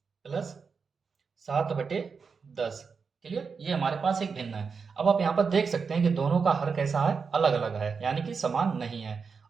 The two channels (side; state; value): left; quieter; 5.4 dB